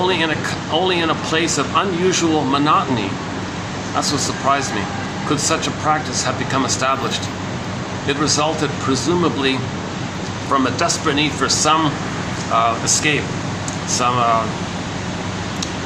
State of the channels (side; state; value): both; identical; correlation 1.00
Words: in a place of unusual monotony. That's what surprised me. Could such a practice have become established? It resulted presumably from a desperate need for some escape, some